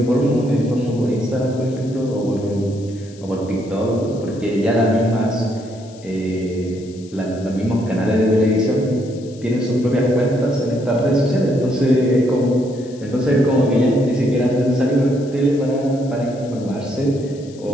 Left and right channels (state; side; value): noise; left; hiss, 24 dB below the sound